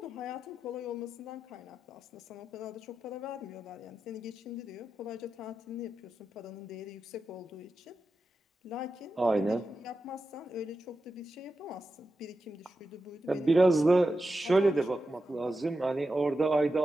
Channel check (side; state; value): both; normal; correlation 0.90